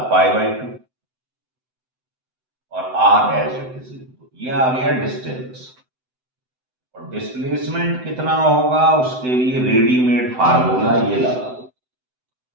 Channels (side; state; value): left; late; 7.9 ms